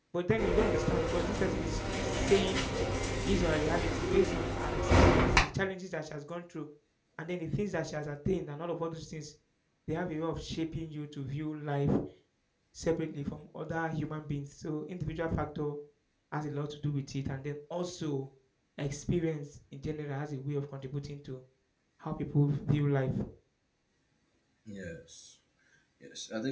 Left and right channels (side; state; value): both; identical; correlation 1.00